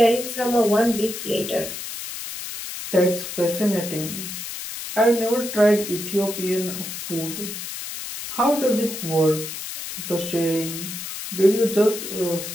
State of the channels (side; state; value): left; noise; hiss, 8 dB below the sound